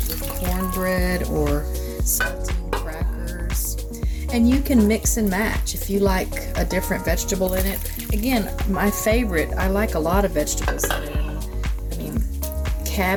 with cornbread or saltine crackers. And you can mix and match if you like a different vegetable in it. Again, my favorite, I like a lot of vegetables in it. I mean,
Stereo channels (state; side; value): identical; both; correlation 1.00